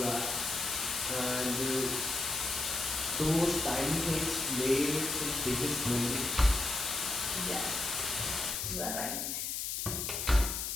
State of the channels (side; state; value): left; noise; hiss, 2 dB below the sound